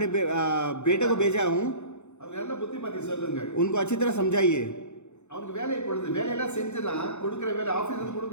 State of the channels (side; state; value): right; late; 0.83 ms